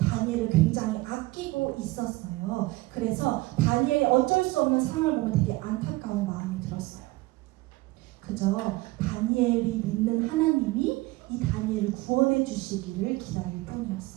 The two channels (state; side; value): quieter; left; 20.6 dB